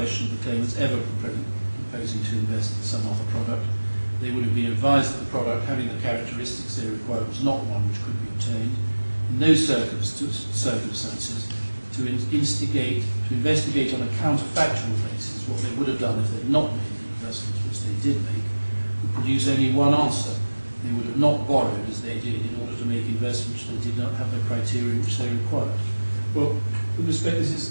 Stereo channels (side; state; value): both; inverted; correlation -1.00